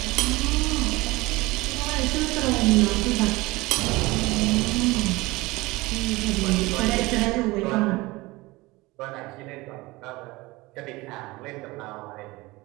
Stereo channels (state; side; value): quieter; left; 21.5 dB